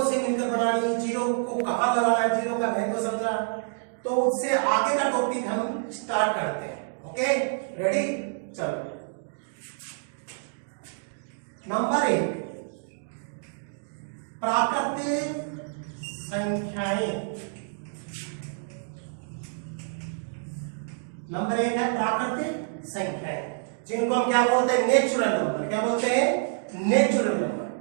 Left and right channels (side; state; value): left; silent; digital silence